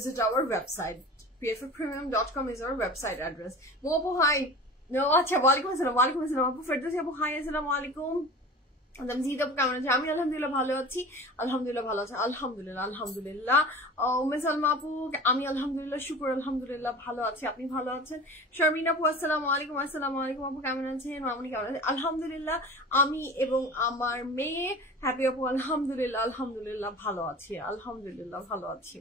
our website. pfpremium.com is our website address. Mopo hi. No, acha walaikum assalam apu. Firdausi apu hi, assalamu alaikum. জিদ আপু কেমন আছে? আমি আলহামদুলিল্লাহ ভালো আছি, আলহামদুলিল্লাহ ভালো আছে, আলহামদুলিল্লাহ। উম্মে সালমা আপু, আমি আলহামদুলিল্লাহ শুকর আলহামদুলিল্লাহ ভালো আছি, আপনি ভালো আছেন? শারমিন আপু আসসালামু আলাইকুম আপু কেমন আছেন? মামুনি কেমন আছে? আলহামদুলিল্লাহ আমি এবং আমার মেয়ে হ্যাপি আপু আলহামদুলিল্লাহ ভালো আছি, আলহামদুলিল্লাহ ভালো আছি।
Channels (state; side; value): normal; both; correlation 0.37